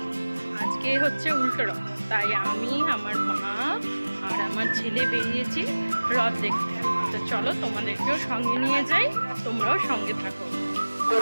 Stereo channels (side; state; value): both; inverted; correlation -1.00